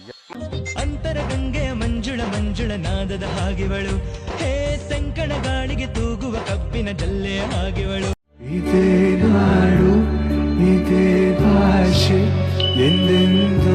ಅಂತರ ಗಂಗೆ ಮಂಜುಳ ಮಂಜುಳ ನಾದದ ಹಾಗೆವಳು, ಹೇ ಸಂಕಣ ಗಾಳಿಗೆ ತೂಗುವ ಕಬ್ಬಿನ ಜಲ್ಲೆ ಹಾಗೆವಳು. ಇದೇ ನಾಡು ಇದೇ ಭಾಷೆ ಎಂದೆಂದೂ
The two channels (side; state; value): both; identical; correlation 1.00